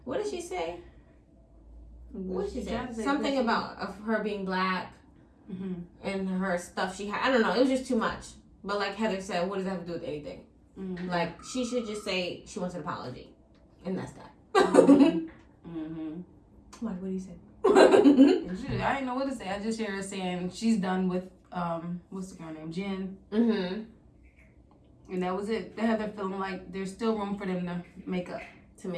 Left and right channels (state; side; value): identical; both; correlation 1.00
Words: what did she say? What did she say? Something about of her being black and her stuff she had. I don't know. It was just too much. But like Heather said, what does that have to do with anything? Like, she should just say she wants an apology. And that's that. What do you say? I didn't know what to say. I just hear her saying she's done with what's the girl name, Jen. And that was it. They had her feeling like there's still room for them to make up, To